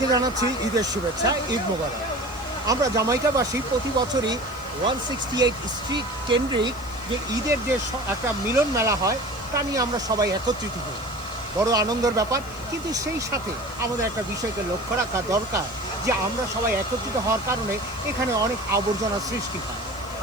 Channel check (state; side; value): noise; left; hiss, 23 dB below the sound